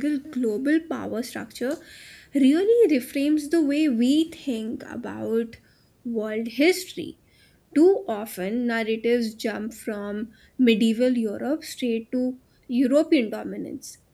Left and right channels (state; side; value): identical; both; correlation 1.00